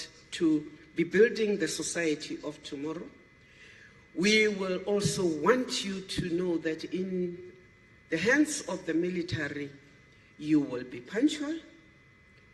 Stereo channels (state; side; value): identical; both; correlation 1.00